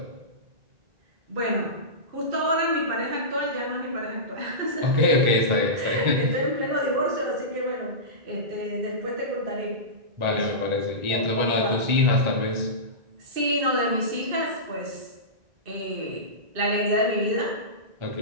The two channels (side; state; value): left; late; 1.4 ms